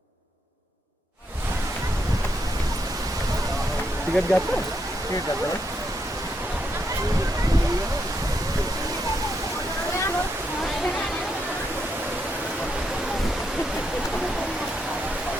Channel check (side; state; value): both; normal; correlation 0.80